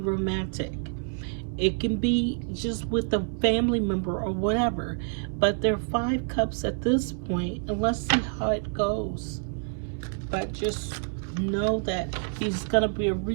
It can be just with a family member or whatever. But there are 5 cups at this point, and let's see how it goes. But just know that there's gonna be a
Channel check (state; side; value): silent; left; 60 dB below the other